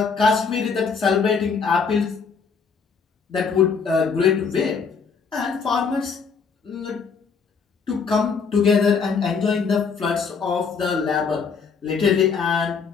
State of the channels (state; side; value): quieter; right; 5.6 dB